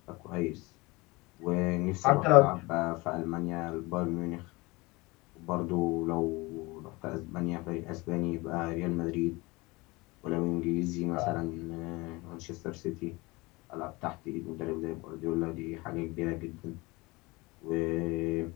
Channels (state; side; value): quieter; right; 23.8 dB